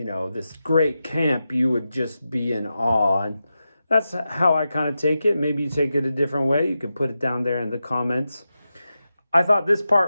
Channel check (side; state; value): both; inverted; correlation -0.91